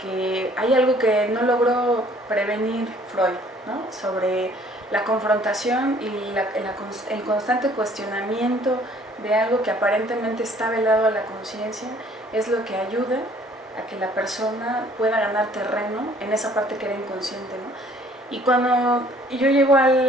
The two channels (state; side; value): normal; both; correlation 0.58